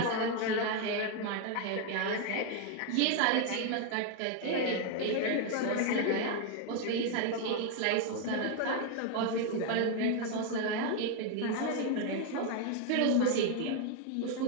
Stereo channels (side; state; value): both; different; correlation 0.01